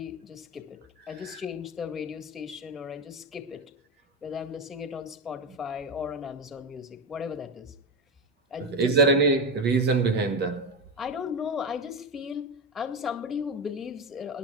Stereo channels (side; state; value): both; normal; correlation 0.16